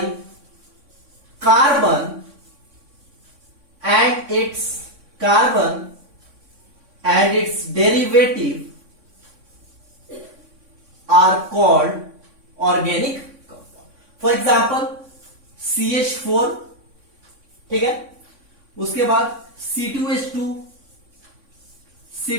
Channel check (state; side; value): late; left; 3.6 ms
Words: carbon and its derivative are called organic compound. For example CH4, ठीक है. उसके बाद C2H2,